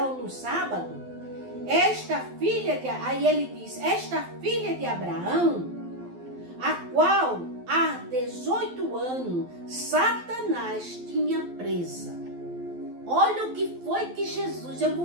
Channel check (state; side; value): late; left; 12 ms